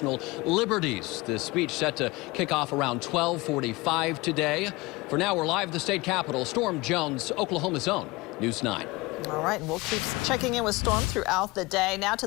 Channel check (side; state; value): right; quieter; 22.6 dB